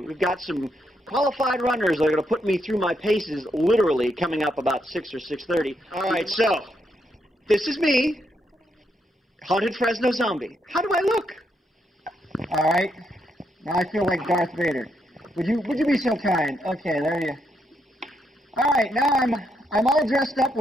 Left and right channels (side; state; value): both; normal; correlation 0.78